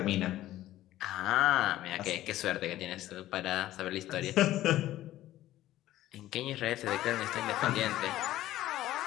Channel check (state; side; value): quieter; right; 14.5 dB